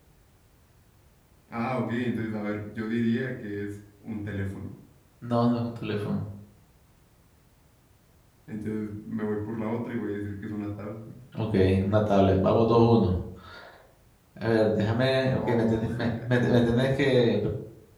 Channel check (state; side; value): identical; both; correlation 1.00